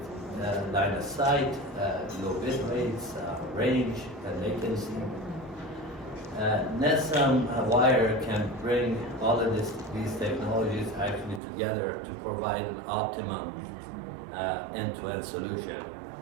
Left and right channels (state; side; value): drops out; left; at 11.4 s